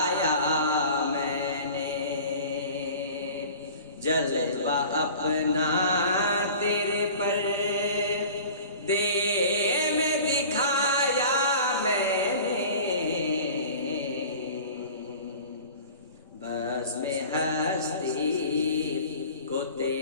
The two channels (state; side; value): inverted; both; correlation -0.42